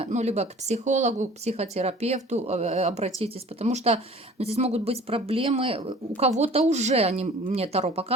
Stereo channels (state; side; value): normal; both; correlation 0.47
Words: ну, либо к психологу, к психотерапевту обратитесь, потому что ну, здесь могут быть проблемы. У кого-то уже, мне Таро